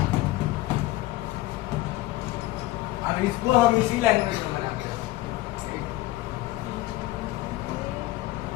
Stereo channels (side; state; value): right; quieter; 17.0 dB